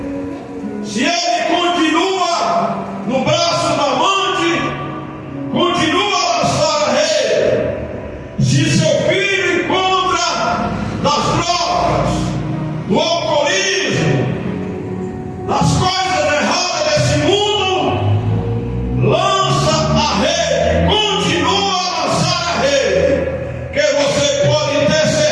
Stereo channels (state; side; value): identical; both; correlation 1.00